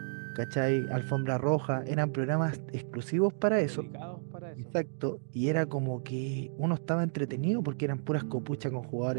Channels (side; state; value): left; silent; digital silence